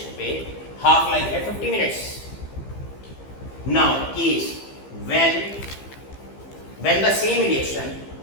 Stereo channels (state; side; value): late; right; 15 ms